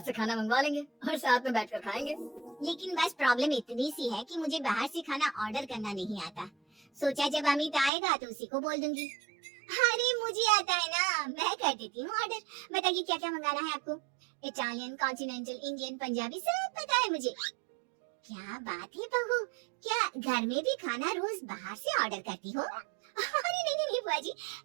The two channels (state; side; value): drops out; left; at 7.9 s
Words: से खाना मंगवा लेंगे और साथ में बैठकर खाएंगे। लेकिन बस प्रॉब्लम इतनी सी है कि मुझे बाहर से खाना ऑर्डर करना नहीं आता। सोचा जब अमित आएगा तो उसी को बोल दूंगी। अरे मुझे आता है ना, मैं कर देती हूँ ऑर्डर। बताइए क्या क्या मंगाना है आपको? इटालियन, कॉन्टिनेंटल, इंडियन, पंजाबी, सब पता है मुझे। क्या बात है बहू, क्या घर में भी खाना रोज बाहर से ऑर्डर करती हो? अरे नहीं नहीं बुआ जी,